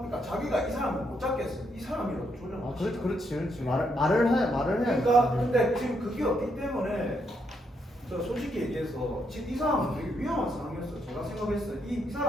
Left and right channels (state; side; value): normal; both; correlation 0.77